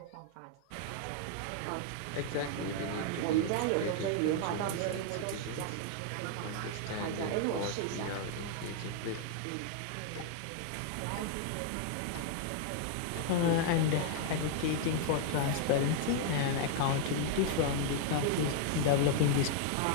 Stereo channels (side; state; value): both; different; correlation 0.00